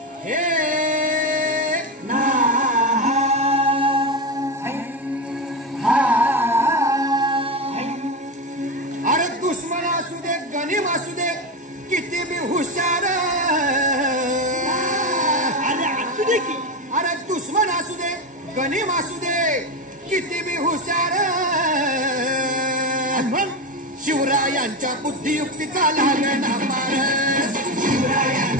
किती बी हुशार, अरे असू दे की, अरे दुश्मन असू दे गनीम असू दे किती बी हुशार, शिवरायांच्या बुद्धियुक्तीचा लागना पार,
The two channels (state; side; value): normal; both; correlation 0.17